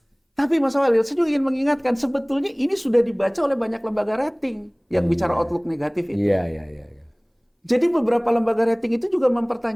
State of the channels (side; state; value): both; identical; correlation 1.00